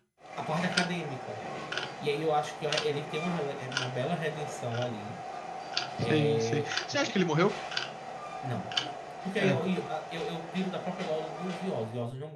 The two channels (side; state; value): both; identical; correlation 1.00